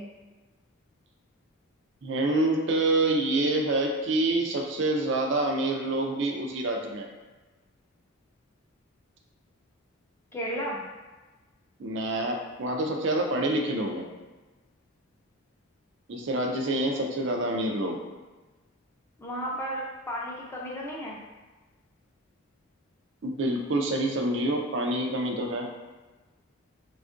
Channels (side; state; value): both; normal; correlation 0.20